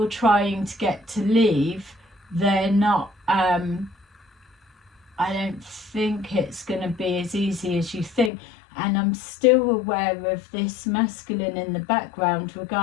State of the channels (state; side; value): drops out; right; at 8.3 s